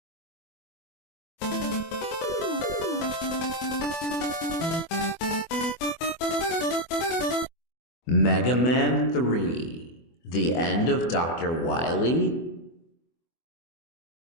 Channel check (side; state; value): right; late; 24 ms